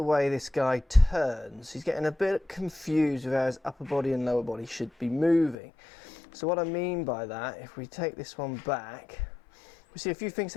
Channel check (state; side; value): drops out; right; at 5.6 s